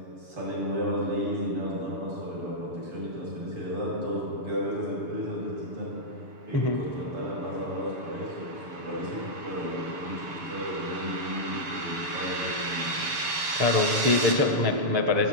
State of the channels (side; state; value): left; late; 6.9 ms